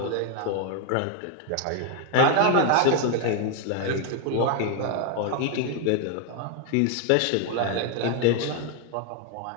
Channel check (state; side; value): different; both; correlation 0.01